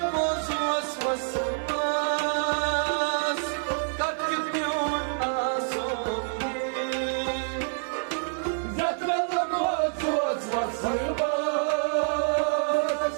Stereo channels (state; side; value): silent; left; digital silence